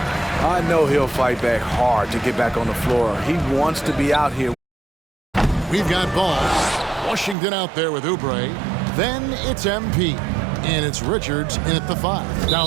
I know he'll fight back hard to get back on the floor. He wants to be out here. We've got ball. Washington out there with Oubre. Then it's MP. And it's Richards in at the 5,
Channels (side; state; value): left; drops out; at 7.4 s